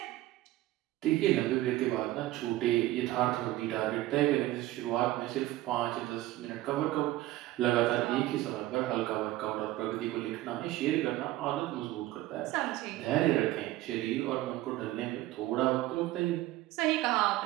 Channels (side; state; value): left; quieter; 16.3 dB